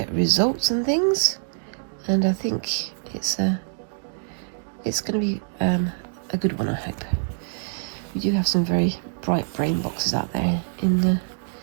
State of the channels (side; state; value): left; silent; digital silence